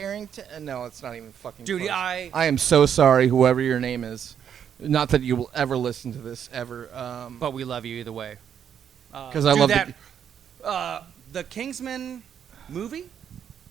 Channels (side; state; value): left; quieter; 8.6 dB